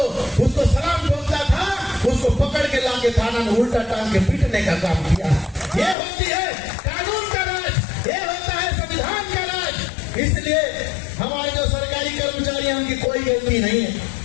उसको सलाम ठोकता था उसको पकड़ के लाके थाना में उल्टा टांग के पीटने का काम किया। ये होती है कानून का राज, ये होता है संविधान का राज। इसलिए हमारे जो सरकारी कर्मचारी हैं उनकी कोई गलती नहीं है,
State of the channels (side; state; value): right; drops out; at 6.0 s